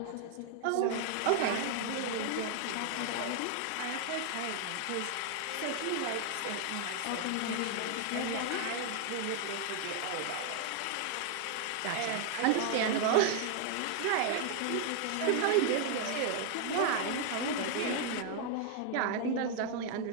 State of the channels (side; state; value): both; different; correlation 0.00